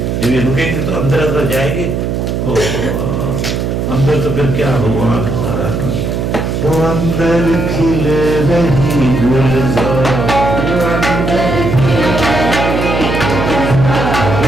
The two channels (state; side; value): noise; right; hum, 1 dB below the sound